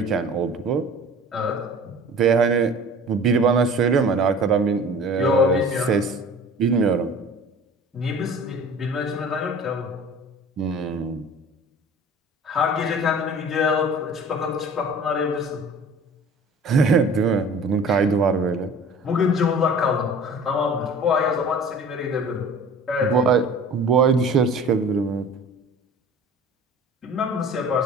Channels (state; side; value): normal; both; correlation 0.43